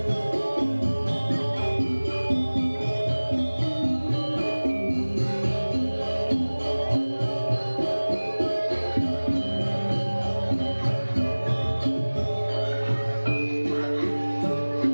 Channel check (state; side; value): inverted; both; correlation -1.00